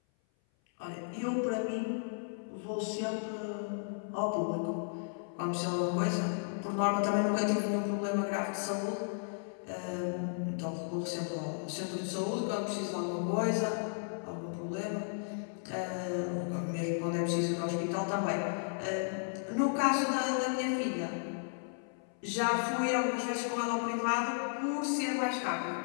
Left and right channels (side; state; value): right; silent; 55 dB below the other